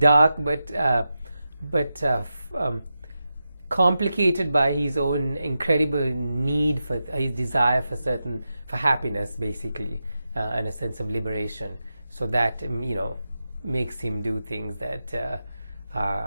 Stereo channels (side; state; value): both; inverted; correlation -0.90